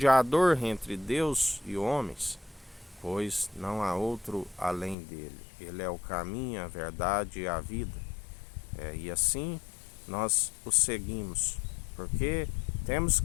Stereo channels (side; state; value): right; drops out; at 5.0 s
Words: entre Deus e homens, pois não há outro além dele. Ele é o caminho, a verdade e a vida. E assim nós o seguimos, porque temos